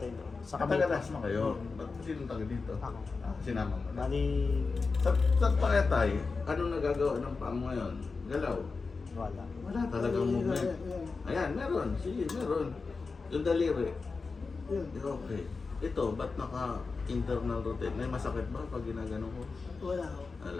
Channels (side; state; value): right; quieter; 4.4 dB